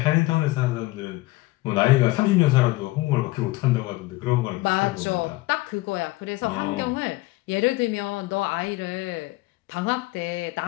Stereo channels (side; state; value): right; quieter; 20.1 dB